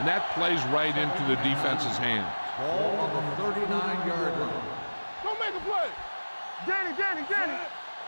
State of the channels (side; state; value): both; inverted; correlation -1.00